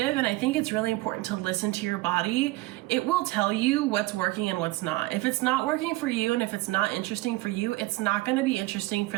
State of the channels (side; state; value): left; quieter; 19.9 dB